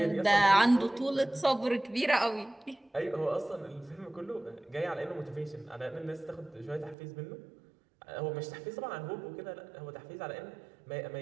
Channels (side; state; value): left; drops out; at 7.0 s